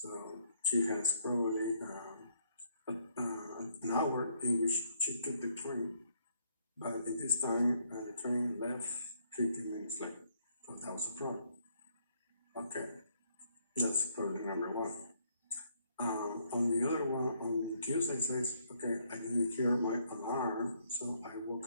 she has probably an hour in which she took the train, but at this time the train left 15 minutes late, so that was a problem. Okay, that's problem number one. On the other one, on Tuesday says, okay, I didn't hear my alarm, so I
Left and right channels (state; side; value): inverted; both; correlation -0.70